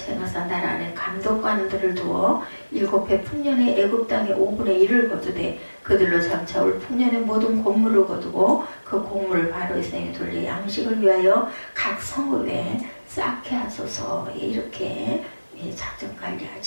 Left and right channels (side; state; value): both; inverted; correlation -1.00